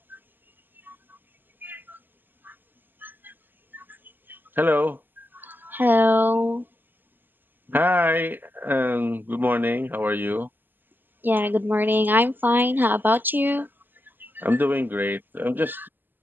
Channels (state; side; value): late; left; 0.092 ms